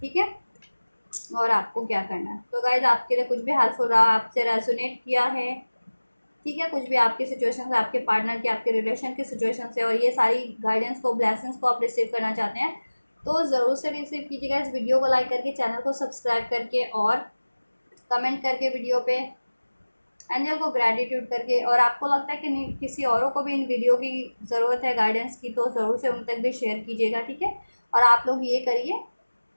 ठीक है, और आपको क्या करना है। तो गाइज आपके लिए कुछ भी हेल्पफुल रहा, आपसे रेजोनेट किया है, ठीक है, कुछ भी आपकी सिचुएशन से, आपके पार्टनर की, आपके रिलेशन की सिचुएशन से, और ये सारी गाइडेंस को, ब्लेसिंग्स को आप रिसीव करना चाहते हैं, तो ज़रूर से रिसीव कीजिएगा। इस वीडियो को लाइक करके, चैनल को सब्सक्राइब करके, और कमेंट करके वीडियो पे एंजल को ग्रेटिट्यूड करके, और आपको लगता है कि नहीं किसी औरों को भी इन वीडियो की ज़रूरत है गाइडेंस की, तो ज़रूर से उन तक भी शेयर कीजिएगा, ठीक है। और आप लोग ये करिए,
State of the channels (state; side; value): inverted; both; correlation -1.00